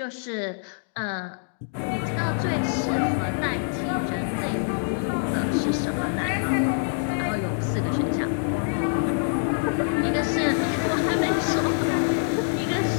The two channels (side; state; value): right; silent; digital silence